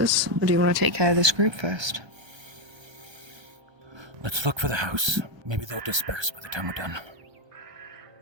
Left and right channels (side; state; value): left; late; 1.3 ms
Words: or do you want to take care of this group first? Let's look for the house. Maybe they'll disperse by the time we're done.